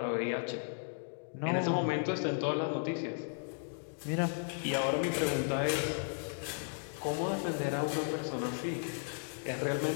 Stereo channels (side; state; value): right; silent; digital silence